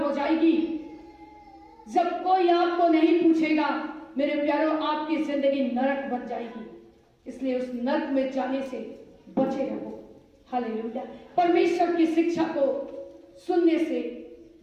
हो जाएगी, जब कोई आपको नहीं पूछेगा, मेरे प्यारों, आपकी जिंदगी नरक बन जाएगी। इसलिए उस नरक में जाने से बचे रहो। हालेलुया। परमेश्वर की शिक्षा को सुनने से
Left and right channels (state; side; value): identical; both; correlation 1.00